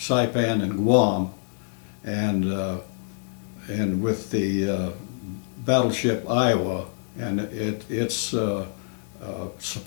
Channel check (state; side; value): silent; right; 61 dB below the other